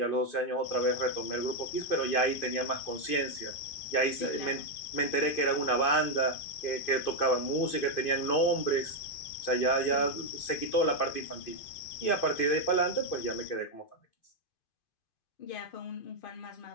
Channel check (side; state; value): right; late; 2.5 ms